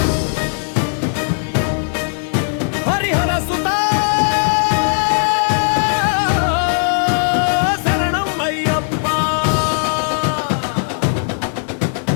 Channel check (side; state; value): right; silent; digital silence